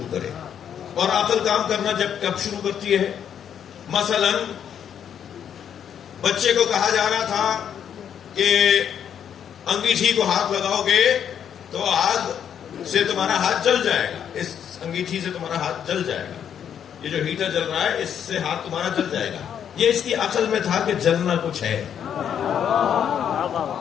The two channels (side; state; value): right; quieter; 8.8 dB